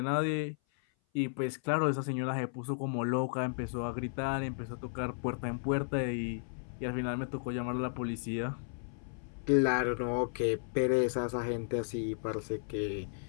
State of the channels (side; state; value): right; silent; 55 dB below the other